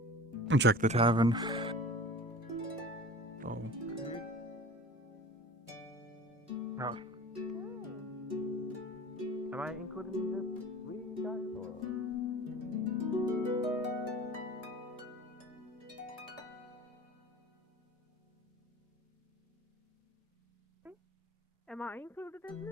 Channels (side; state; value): both; normal; correlation 0.40